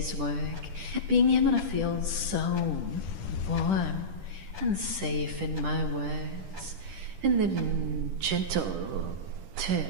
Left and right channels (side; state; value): left; late; 10 ms